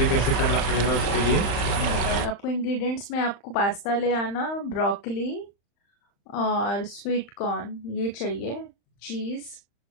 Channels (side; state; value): right; late; 35 ms